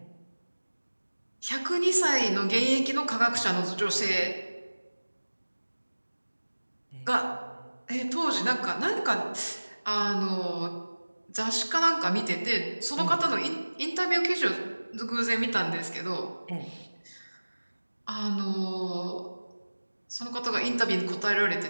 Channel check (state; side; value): inverted; both; correlation -1.00